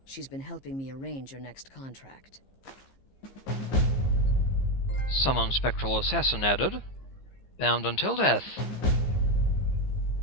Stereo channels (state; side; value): late; right; 15 ms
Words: She's been helping me arrange your next contract. Summon Spectral Assassin added. Bound until death.